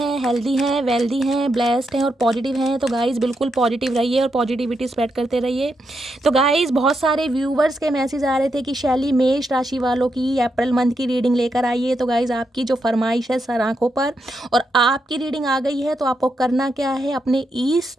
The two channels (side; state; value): both; normal; correlation 0.83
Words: हेल्दी हैं, वेल्दी हैं, ब्लेस्ड हैं और पॉजिटिव हैं। तो गाइस बिल्कुल पॉजिटिव रहिए और पॉजिटिविटी स्प्रेड करते रहिए। तो गाइस बहुत सारे व्यूवर्स के मैसेज आ रहे थे कि शैली मेष राशि वालों की अप्रैल मंथ की रीडिंग लेकर आइए। तो गाइस आपकी जो फरमाइश है सर आंखों पर और आपकी रीडिंग आ गई है। तो आपको करना क्या है, अपने ईस्ट